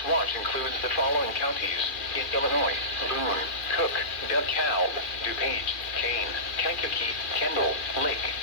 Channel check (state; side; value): late; right; 2.4 ms